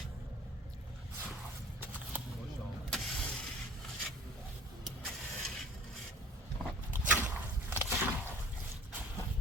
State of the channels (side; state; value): both; normal; correlation 0.48